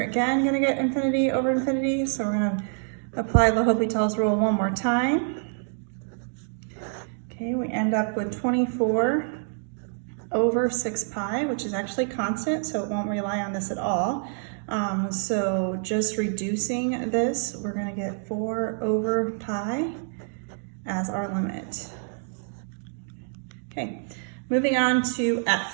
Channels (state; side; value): silent; left; 56 dB below the other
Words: again going to get infinity over infinity, so we're going to apply L'Hopital's rule one more time. Okay, we end up with 24 over 6 pi, which is actually constant, so it won't rely on this at all. So just reducing this, we're going to get 4 over pi as our limit. Okay, moving on to